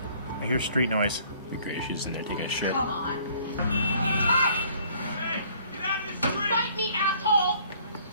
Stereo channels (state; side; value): inverted; both; correlation -0.59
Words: I hear street noise. Be great. She's in there taking a shit. Come on. Hey! Get out of the street! Fight me, asshole!